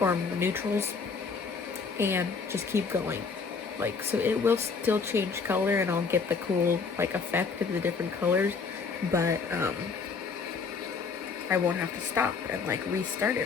or neutrals, and just keep going. Like, so it will still change color, and I'll get the cool like effect of the different colors, but I won't have to stop and like restart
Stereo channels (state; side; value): quieter; right; 5.1 dB